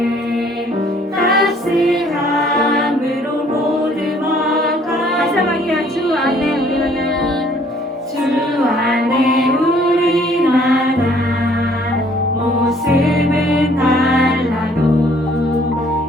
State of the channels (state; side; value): normal; both; correlation 0.60